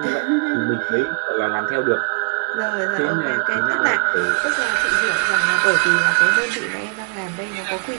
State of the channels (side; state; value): left; quieter; 39.5 dB